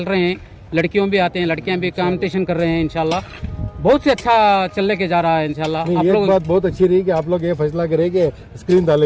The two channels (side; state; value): both; identical; correlation 1.00